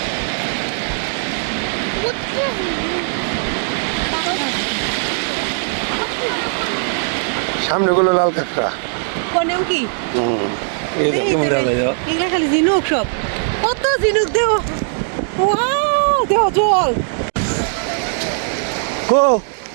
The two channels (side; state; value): left; silent; digital silence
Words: সামনে গুলো লাল কাঁকড়া। কোনেও কি এই যে কেমন দেখা যায়। এগুলা খালি ঝিনুক সব, কত ঝিনুক দেও, ওয়াও দেও জল। কো